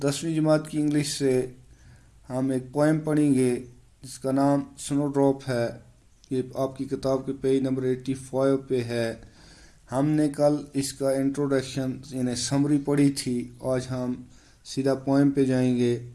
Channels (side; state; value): both; identical; correlation 1.00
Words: 10वीं जमात की इंग्लिश से हम एक पोएम पढ़ेंगे जिसका नाम स्नो ड्रॉप है। ये आपकी किताब के पेज नंबर 85 पे है। हमने कल इसका इंट्रोडक्शन यानी समरी पढ़ी थी। आज हम सीधा पोएम पे जाएंगे।